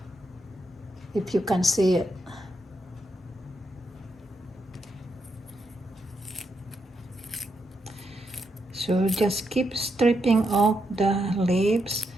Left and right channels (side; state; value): both; normal; correlation 0.81